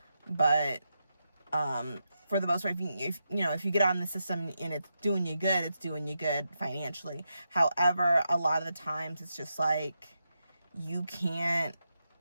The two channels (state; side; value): inverted; both; correlation -0.86